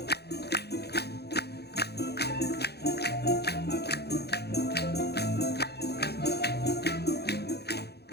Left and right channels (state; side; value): late; right; 0.48 ms